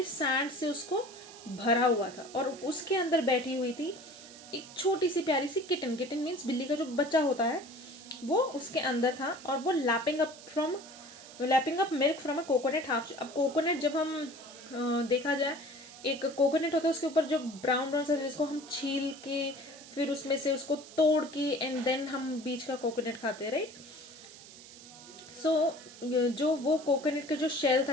सैंड से उसको भरा हुआ था, और उसके अंदर बैठी हुई थी एक छोटी सी प्यारी सी किटन. किटन मीन्स बिल्ली का जो बच्चा होता है, वो उसके अंदर था. और वो lapping up milk from a coconut half. अब कोकोनट जब हम देखा जाए, एक कोकोनट होता है, उसके ऊपर जो ब्राउन ब्राउन सा, जिसको हम छील के फिर उसमें से उसको तोड़ के एंड देन हम बीच का कोकोनट खाते हैं, राइट. सो जो वो कोकोनट का जो शेल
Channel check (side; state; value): right; noise; hiss, 18 dB below the sound